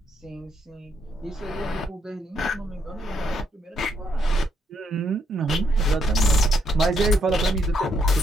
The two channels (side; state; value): both; normal; correlation 0.75